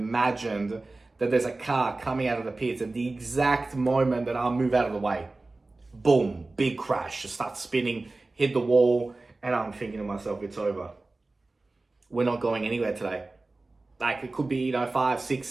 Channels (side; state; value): left; quieter; 3.2 dB